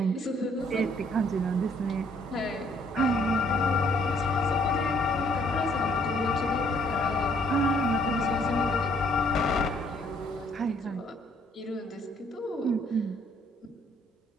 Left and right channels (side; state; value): both; normal; correlation 0.64